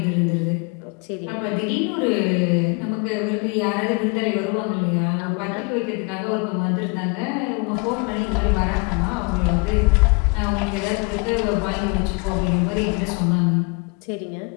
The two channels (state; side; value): quieter; right; 30.6 dB